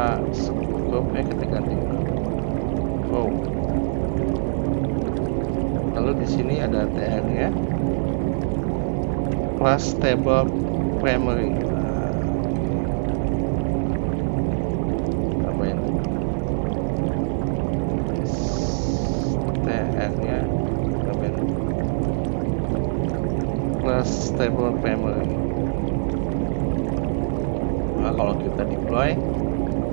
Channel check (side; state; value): left; silent; digital silence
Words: scope kita ganti row. Lalu di sini ada TR-nya, class table primary. Tambahin TR-nya, tambahin class table primary. Nah, kalau kita deploy,